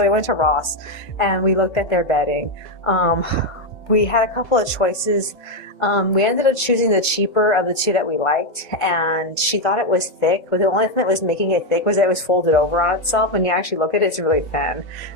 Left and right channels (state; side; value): late; right; 1.5 ms